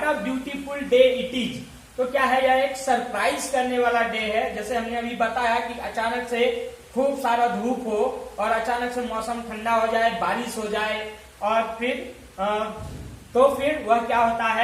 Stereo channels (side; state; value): both; identical; correlation 1.00